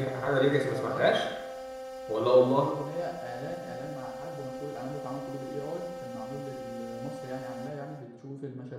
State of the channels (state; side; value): identical; both; correlation 1.00